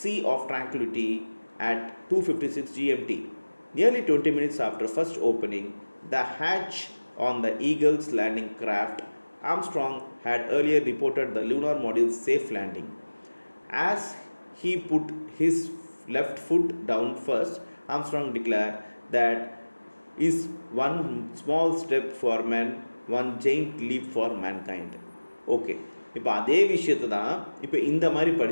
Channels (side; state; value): both; inverted; correlation -1.00